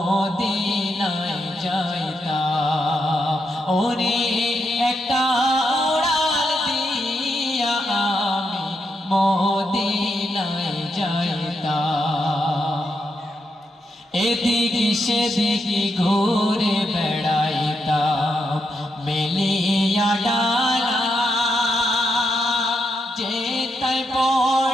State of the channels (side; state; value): both; normal; correlation 0.82